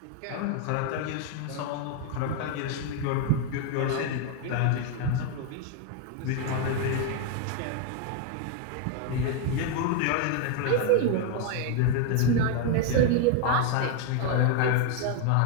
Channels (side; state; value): both; different; correlation 0.01